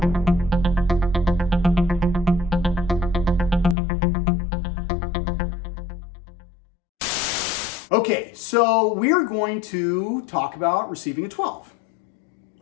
Okay, so we're going to talk about receiving a 12.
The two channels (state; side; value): drops out; right; at 3.8 s